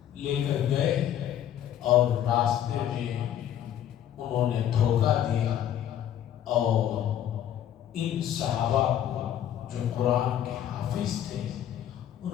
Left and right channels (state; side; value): quieter; right; 10.8 dB